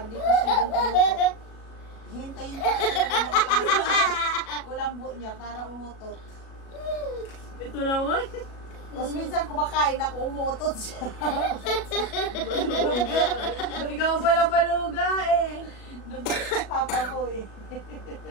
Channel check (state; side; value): late; right; 37 ms